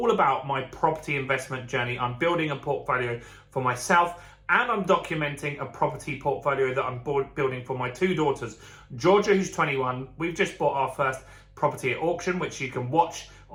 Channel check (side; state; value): both; identical; correlation 1.00